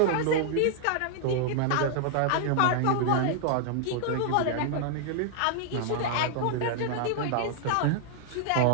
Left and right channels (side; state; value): both; different; correlation -0.01